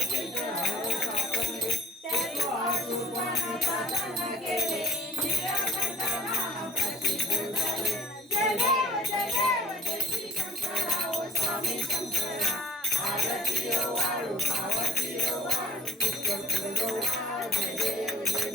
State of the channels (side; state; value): both; normal; correlation 0.48